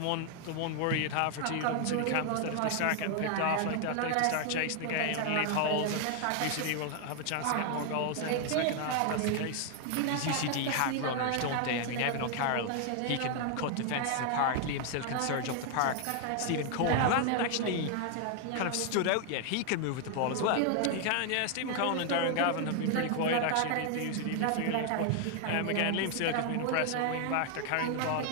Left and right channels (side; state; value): both; different; correlation 0.00